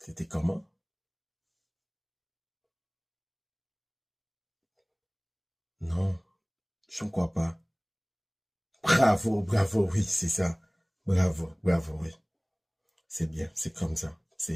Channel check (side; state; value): both; identical; correlation 1.00